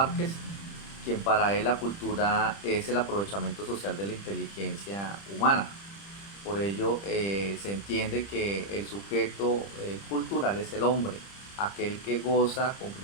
quien para él la cultura es el aprovechamiento social de la inteligencia humana. Por ello se entiende que el sujeto cultural es el hombre, aquel que goza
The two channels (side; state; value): right; late; 30 ms